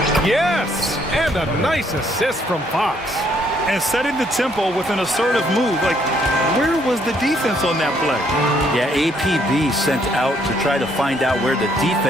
Yes! And a nice assist from Fox. And setting the tempo with an assertive move. Like, where was the defense on that play? Yeah, APB sent out to try to find out where the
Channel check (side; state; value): both; normal; correlation 0.69